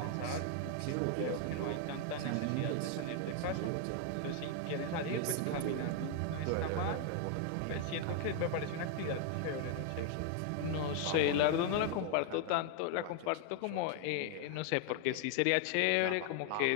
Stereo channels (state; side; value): different; both; correlation 0.00